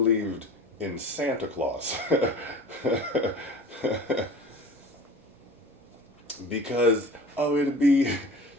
in Santa Claus because, oh, it'd be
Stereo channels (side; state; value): both; normal; correlation 0.40